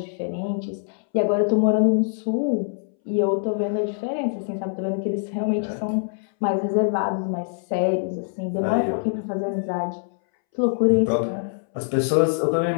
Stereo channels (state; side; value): silent; right; 63 dB below the other